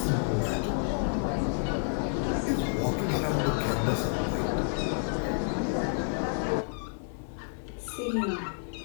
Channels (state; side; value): silent; right; digital silence